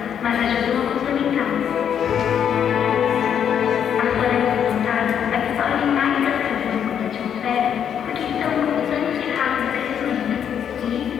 mas ajudam a complementá-la. As florestas plantadas absorvem mais gás carbônico da atmosfera porque estão em constante e rápido crescimento e,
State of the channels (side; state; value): right; quieter; 8.6 dB